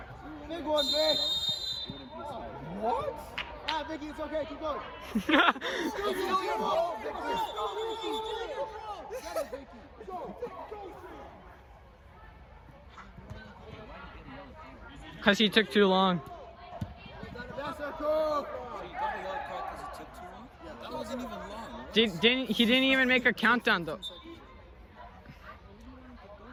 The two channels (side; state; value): both; identical; correlation 1.00